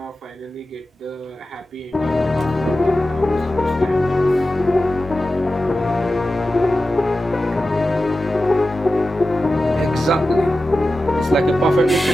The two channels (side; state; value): both; normal; correlation 0.94